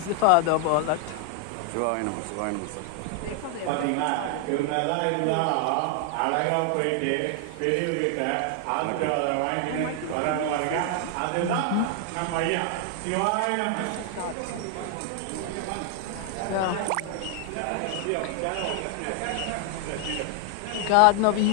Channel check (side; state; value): both; different; correlation 0.00